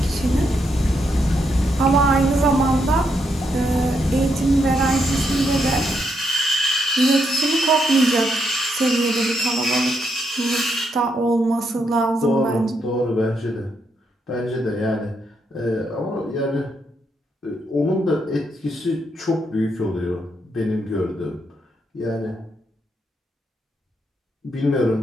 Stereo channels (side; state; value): both; normal; correlation 0.78